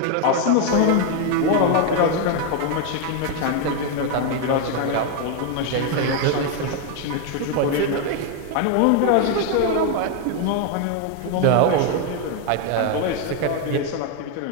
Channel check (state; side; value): different; both; correlation 0.01